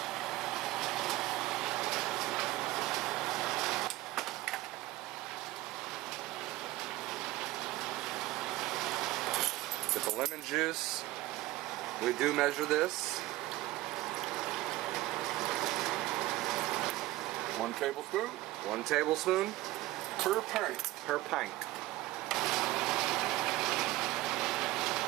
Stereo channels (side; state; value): left; quieter; 17.7 dB